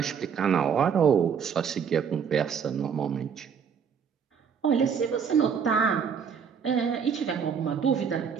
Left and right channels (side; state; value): left; quieter; 7.0 dB